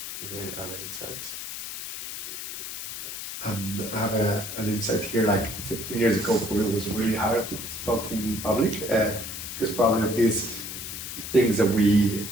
Any other insights? I have an insight here. Like 15 years ago, for me, it was really hard to talk in public because probably these things that we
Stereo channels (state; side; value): noise; left; hiss, 8 dB below the sound